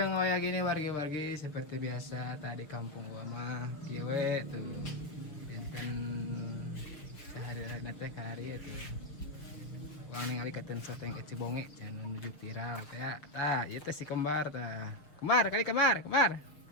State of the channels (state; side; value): late; right; 6.3 ms